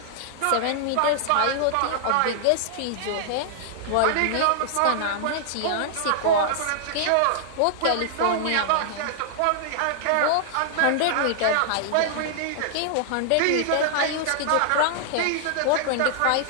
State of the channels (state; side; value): different; both; correlation -0.01